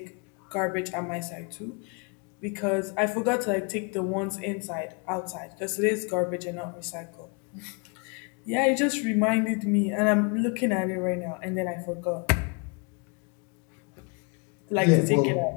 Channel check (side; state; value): right; quieter; 33.6 dB